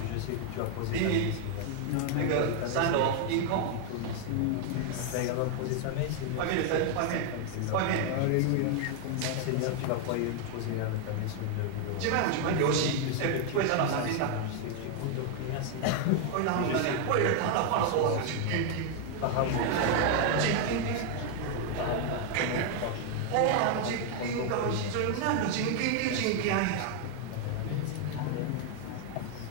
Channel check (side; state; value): both; different; correlation 0.00